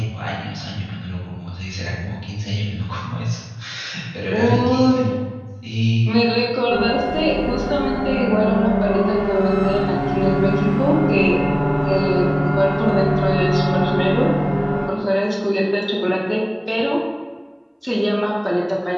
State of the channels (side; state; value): both; identical; correlation 1.00